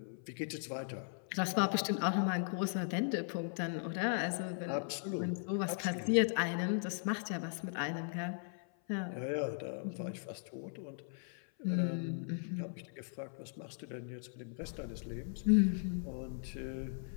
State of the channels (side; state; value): right; silent; 52 dB below the other